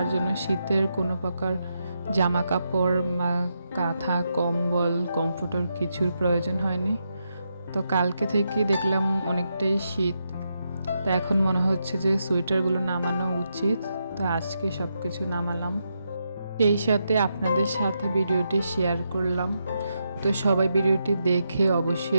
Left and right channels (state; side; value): inverted; both; correlation -0.83